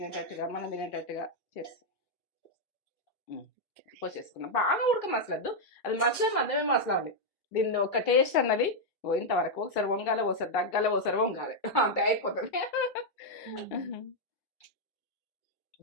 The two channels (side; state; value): both; normal; correlation -0.01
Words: మనం తినేటట్టుగా చేస్తాం. పోసేసుకున్నాం. బాగా ఉడక మసలద్దు, అది మధ్యమే మసలాలి. దీన్ని ఒక టేస్ట్ అన్నది ఇంతవరకు ఒకసారి వంగాలి, ఒకసారి దగ్గాలి, ఒకసారి వంగాలి, అంతే అయిపోతుంది.